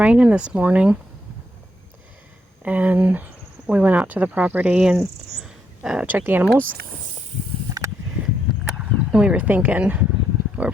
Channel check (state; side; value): normal; both; correlation 0.77